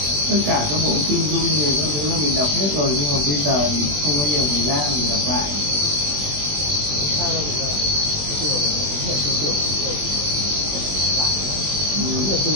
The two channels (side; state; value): left; late; 20 ms